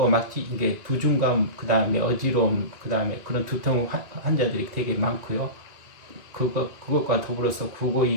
막 이게 두중감, 그 다음에 어지러움, 그 다음에 그런 두통 환자들이 되게 많고요. 그것과 더불어서 구고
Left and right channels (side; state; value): left; late; 2.4 ms